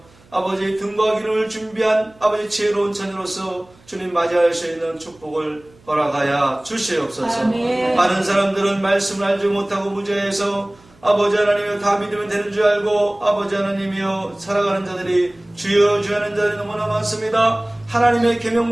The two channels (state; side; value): noise; right; hum, 29 dB below the sound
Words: 아버지 등과 기름을 준비한 아버지 지혜로운 자녀로서 주님 맞이할 수 있는 축복을 허락하여 주시옵소서. 아멘. 많은 사람들은 말씀을 알지 못하고 무죄해서 아버지 하나님이여 다 믿으면 되는 줄 알고 아버지 하나님이여 살아가는 자들이 주여 주여 하는 자들이 너무나 많습니다. 하나님의